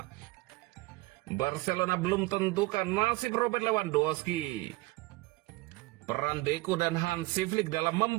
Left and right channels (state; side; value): quieter; left; 21.2 dB